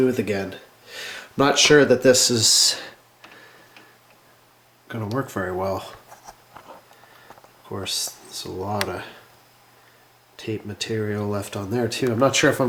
again. I'm not sure that this is going to work very well. Of course, there's a lot of tape material left on there too. I'm not sure if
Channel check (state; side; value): identical; both; correlation 1.00